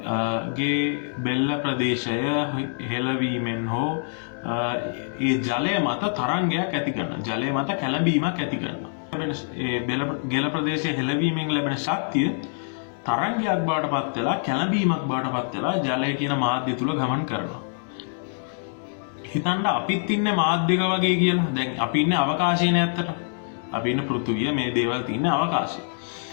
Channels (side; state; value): right; silent; digital silence